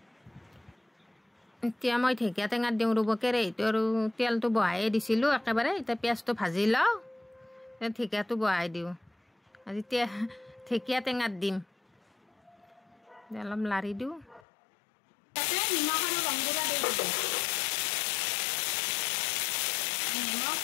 এতিয়া মই ঢেকীয়া টেঙাত দিওঁ ৰ'ব কেৰাহীটো আৰু তেলটো বহাই দিছিলোঁ একেবাৰে এতিয়া পিঁয়াজটো ভাজি লওঁ ঢেকীয়াটো বহাই দিওঁ আজি ঢেকীয়া টেঙাত দিম অলপ লাৰি দিওঁ নিমখ আৰু ৰং গুড়া দি দিব নিমখ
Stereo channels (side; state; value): right; drops out; at 14.4 s